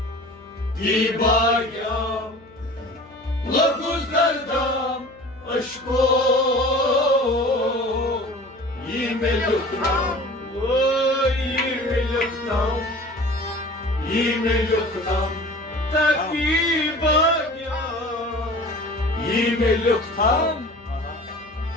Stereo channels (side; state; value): left; noise; hum, 25 dB below the sound